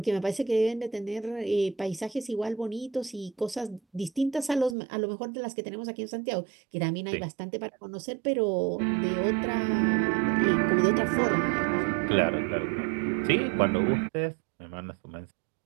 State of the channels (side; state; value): left; drops out; at 4.8 s